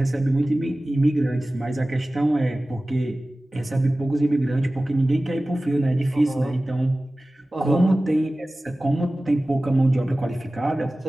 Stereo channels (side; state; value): both; normal; correlation 0.97